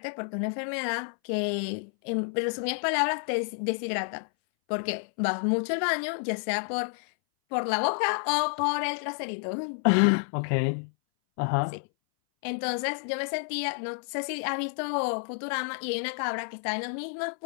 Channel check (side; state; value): right; silent; 58 dB below the other